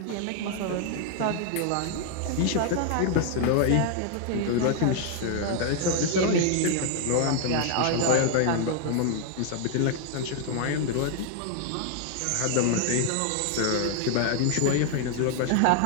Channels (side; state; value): both; different; correlation 0.00